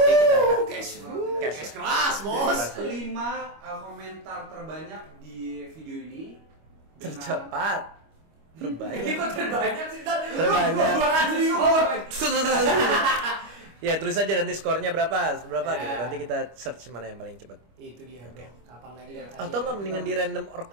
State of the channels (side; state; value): left; late; 25 ms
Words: kita Cash keras, bos. 5 komentar terbanyak di video ini dengan- tercepat. Ini Terbanyak. kok terbanyak sih? Terbanyak. Lu Ya tulis aja nanti skornya berapa gitu. Nanti kita search mana yang paling cepat. Itu dia. Oke. Kapan lagi dan Atau nggak mendingan di random org